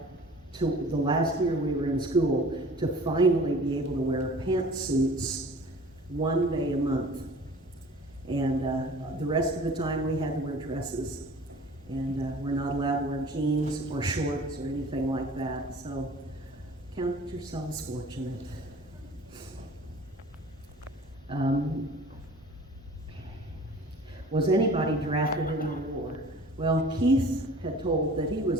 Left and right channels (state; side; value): normal; both; correlation 0.46